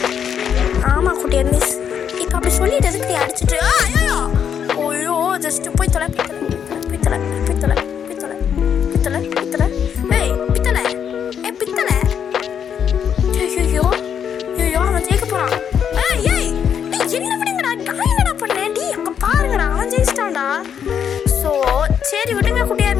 ஆமாம் குட்டியார் மிஸ். இப்போ அப்படி சொல்லிட்டு எதுக்கு நீ அடிச்சுட்டு ஐயோ ஜஸ்ட்டு போய் தொலை ஐயோ அவன் ஜெயிக்க போகிறான். என்ன விடுங்கடா நான் என்னடா பண்ணேன் டி அங்கே பாருங்கடா அவன் ஜெயிச்சிட்டான்டா. ஸோ சரி விடுங்க குட்டியார்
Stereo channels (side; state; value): right; quieter; 8.1 dB